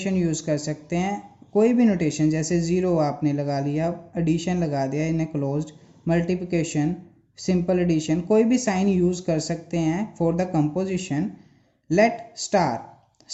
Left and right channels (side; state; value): both; identical; correlation 1.00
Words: यूज कर सकते हैं, कोई भी नोटेशन, जैसे ज़ीरो आपने लगा लिया, एडिशन लगा दिया in a closed, multiplication, simple addition, कोई भी साइन यूज कर सकते हैं for the composition. Let